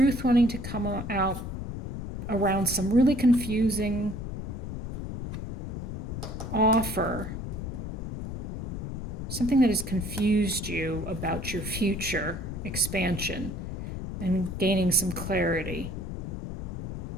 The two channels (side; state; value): left; noise; rumble, 5 dB below the sound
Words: wanting to come out around some really confusing offer. Something that has confused you about your future expansion and gaining some clarity.